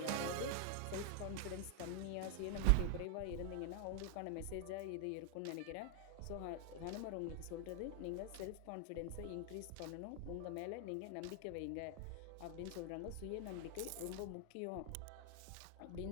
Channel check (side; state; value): both; different; correlation 0.00